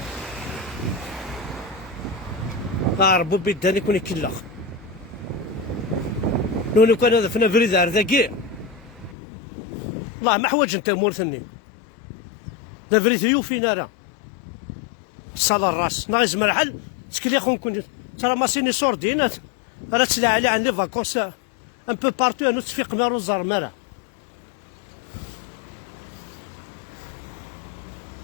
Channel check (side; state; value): right; drops out; at 9.2 s